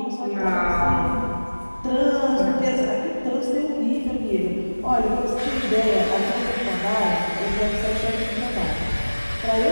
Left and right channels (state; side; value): inverted; both; correlation -1.00